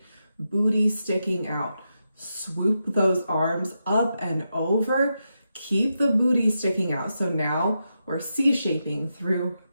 booty sticking out. Swoop those arms up and over. Keep the booty sticking out. So now we're C-shaping through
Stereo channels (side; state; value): both; inverted; correlation -0.86